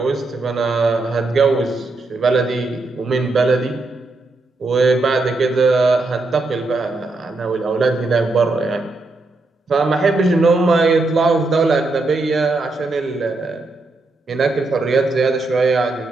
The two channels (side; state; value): left; quieter; 3.2 dB